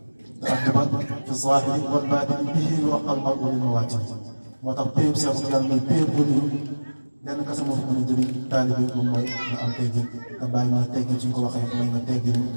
te addaban fi zaahiri wal baatini bihi yu'aqal mar'u li mawaatini moo tax péeb Cheikh Tidiane mooy péeb bu niru lenn kese moo fa mën a jëriñ taalibe moom mooy nga am teggin te bàyyi ma teggin suñ ko waxee mooy nga teggin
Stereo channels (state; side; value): inverted; both; correlation -1.00